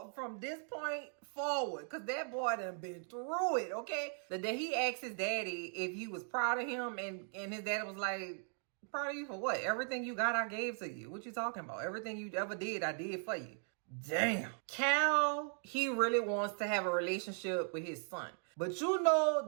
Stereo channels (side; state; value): left; silent; 52 dB below the other